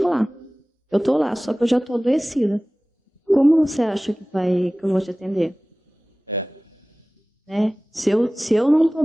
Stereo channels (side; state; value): both; normal; correlation 0.98